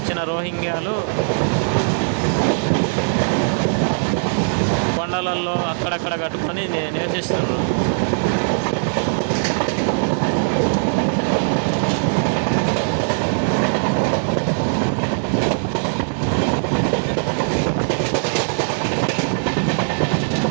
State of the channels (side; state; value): left; silent; digital silence